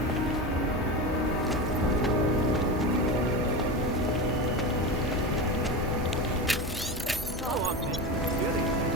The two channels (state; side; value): normal; both; correlation 0.23